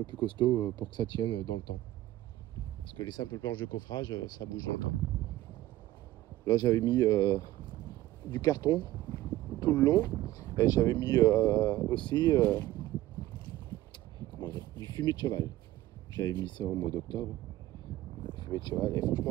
plus costaud pour que ça tienne dans le temps. Parce que les simples planches de coffrage, ça bouge dans le temps. Là, j'avais mis du carton tout le long. Et j'avais mis aussi du fumier de cheval. J'avais mis ça au mois d'octobre. Fumier de cheval. Et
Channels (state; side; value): quieter; left; 15.5 dB